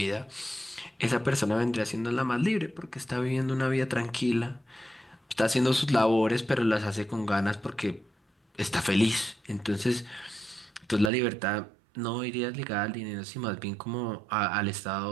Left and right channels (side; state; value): left; drops out; at 11.1 s